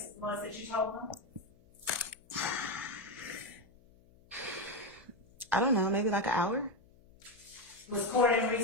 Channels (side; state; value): left; noise; hum, 29 dB below the sound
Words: it was that you told them? I don't know, maybe like an hour. Was court in